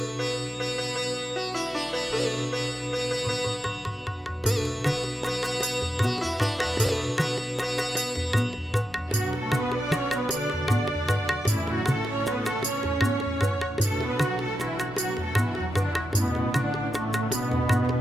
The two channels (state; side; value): normal; both; correlation 0.88